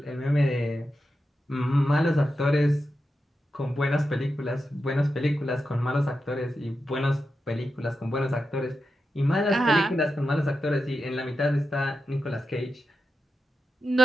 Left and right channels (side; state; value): both; normal; correlation 0.89